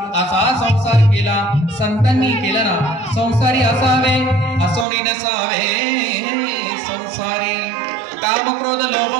असा संसार केला. संतांनी केला ना. संसारी असावे असोनी नसावे. संसारी काम क्रोध लोभ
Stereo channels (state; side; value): drops out; left; at 4.9 s